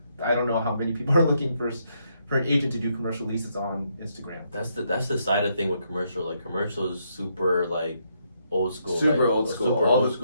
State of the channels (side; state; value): both; inverted; correlation -0.76